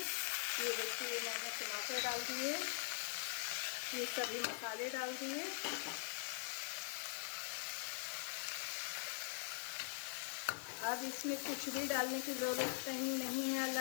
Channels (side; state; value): right; silent; digital silence